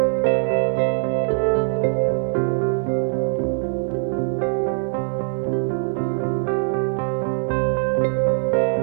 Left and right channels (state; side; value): silent; left; digital silence